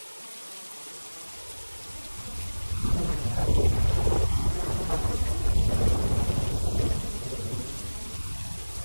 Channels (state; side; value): inverted; both; correlation -1.00